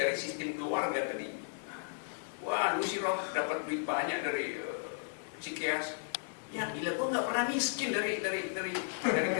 sistem keluarga tadi. Wah, lu sih Roh dapat duit banyak dari Cikeas. Ya gila, gue nggak pernah miskin dari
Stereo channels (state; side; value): silent; right; digital silence